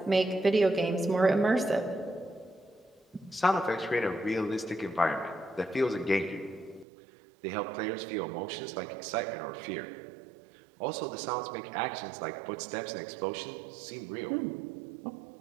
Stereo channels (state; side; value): drops out; left; at 6.9 s